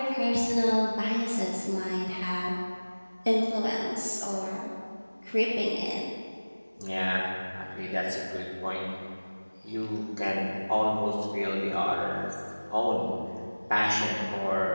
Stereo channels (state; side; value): inverted; both; correlation -1.00